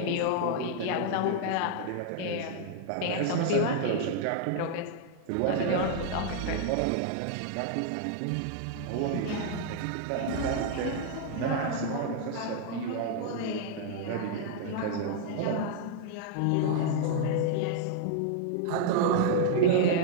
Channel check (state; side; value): different; both; correlation -0.01